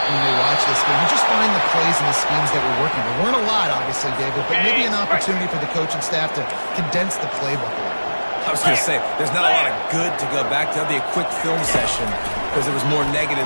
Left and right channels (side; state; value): both; inverted; correlation -1.00